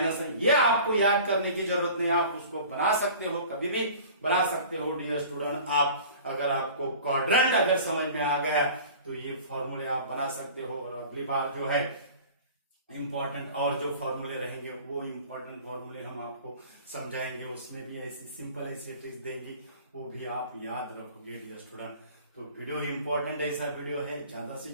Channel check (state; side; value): inverted; both; correlation -0.43